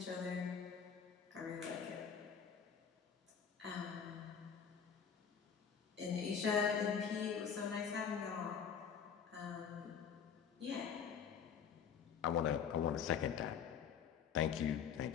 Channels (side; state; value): right; quieter; 7.3 dB